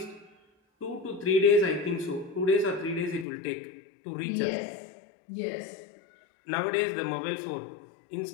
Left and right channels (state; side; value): drops out; right; at 3.2 s